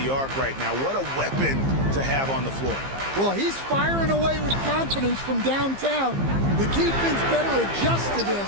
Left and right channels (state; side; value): late; left; 15 ms